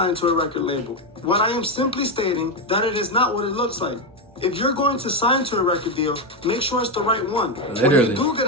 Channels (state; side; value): normal; both; correlation 0.08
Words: to a record label. What I am simply stating that it is not what it looks like. If you're going to sign to a record deal, make sure it's the right one. Literally. When you do get